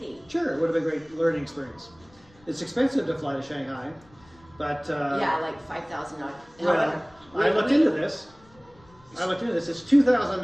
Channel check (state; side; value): noise; left; rumble, 28 dB below the sound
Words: Sure, it would have been a great learning experience. It's expensive to fly to Shanghai, but yeah, like $5,000. Well, I looked into this. It's